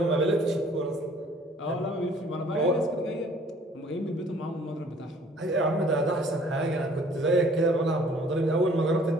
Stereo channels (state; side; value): normal; both; correlation 0.56